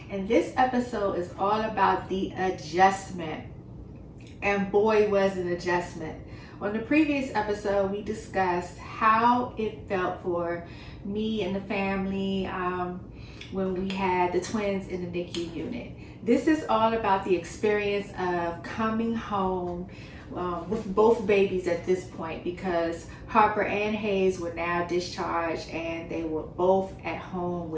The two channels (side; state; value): both; identical; correlation 1.00